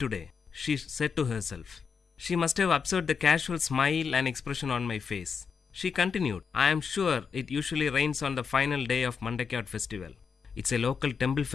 she said to herself. She must have observed the casual smile and expression on my face. She continued, I am sure it usually rains on the final day of Mandakiyat festival. It's a local temple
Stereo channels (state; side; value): quieter; right; 6.0 dB